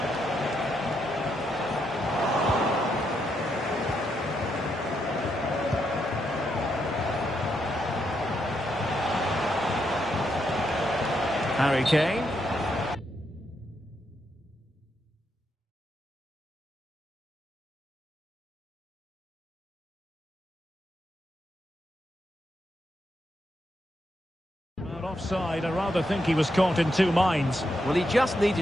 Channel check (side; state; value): both; normal; correlation 0.80